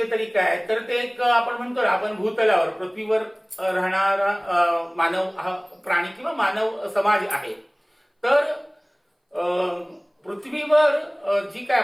तरी काय, तर ते एक आपण म्हणतो आपण भूतलावर पृथ्वीवर राहणारा मानव हा प्राणी किंवा मानव समाज आहे. तर पृथ्वीवर जी काय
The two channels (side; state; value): both; identical; correlation 1.00